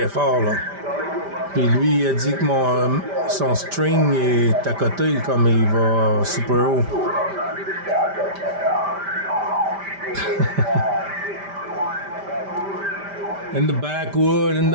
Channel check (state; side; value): late; left; 5.1 ms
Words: fort, là. Puis lui, il a dit que son string est à côté, comme il va super haut. In the backwood, in